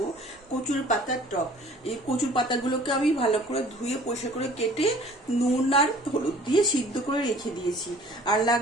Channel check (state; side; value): normal; both; correlation 0.51